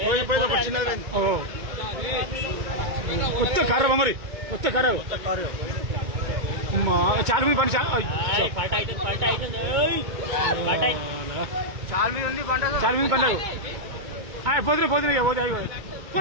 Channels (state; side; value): late; left; 2.2 ms